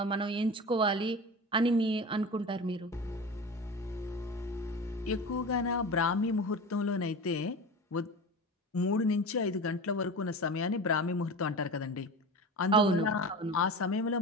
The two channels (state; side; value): normal; both; correlation 0.30